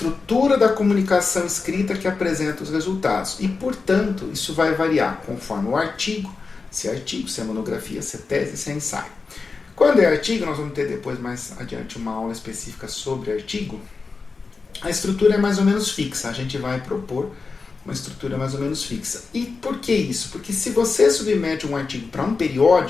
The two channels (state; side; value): quieter; right; 4.4 dB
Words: da comunicação escrita que apresenta os resultados. E, portanto, isso vai variar conforme o artigo, se é monografia, se é tese, se é ensaio. Quando é artigo, nós vamos ter depois mais adiante uma aula específica sobre artigo, a estrutura é mais ou menos fixa, a gente vai propor uma estrutura mais ou menos fixa. E por que isso? Porque se você submete um artigo para um